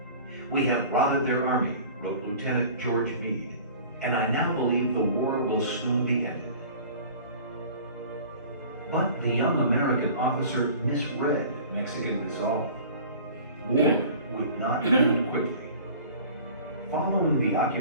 "We have routed their army," wrote Lieutenant George Meade, "and I now believe the war will soon be ended." But the young American officer misread Mexican resolve. War would not end quickly. Following the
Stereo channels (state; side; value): inverted; both; correlation -0.44